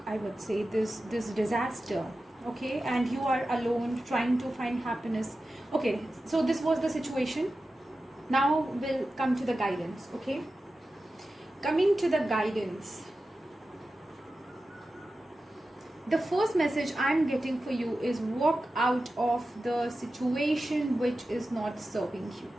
I would say, this disaster, okay? And you are alone trying to find happiness. Okay, so this was the situation. Now we'll come to the guidance, okay? Coming to the guidance, the first message I'm getting for you is walk out of the situation which is not serving you.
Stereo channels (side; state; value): both; normal; correlation 0.93